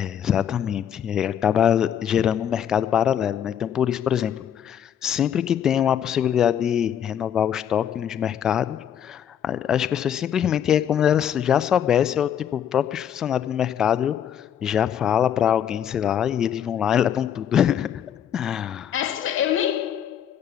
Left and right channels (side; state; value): right; quieter; 9.3 dB